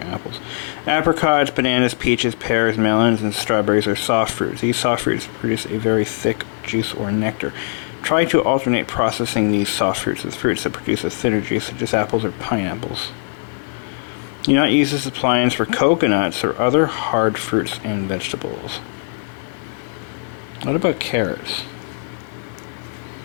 apples. Apricots, bananas, peaches, pears, melons, and strawberries are soft fruits. These soft fruits produce a very thick juice or nectar. Try to alternate processing these soft fruits with fruits that produce a thinner juice, such as apples or pineapples. Do not use this appliance for coconuts or other hard fruits and vegetables. What about carrots?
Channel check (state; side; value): silent; right; digital silence